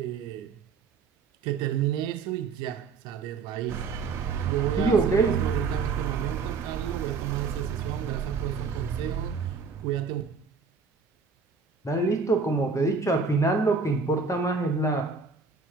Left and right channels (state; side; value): quieter; left; 4.9 dB